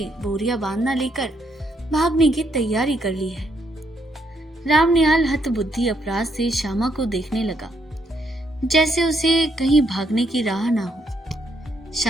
बोरिया बांधना लेकर भागने की तैयारी कर ली है। राम निहाल हतबुद्धि अपराध से श्यामा को देखने लगा, जैसे उसे कहीं भागने की राह ना हो।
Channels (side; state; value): both; normal; correlation 0.75